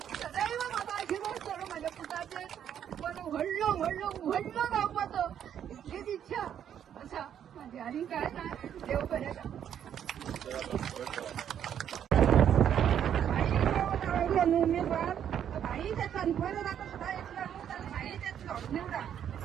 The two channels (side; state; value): left; quieter; 9.4 dB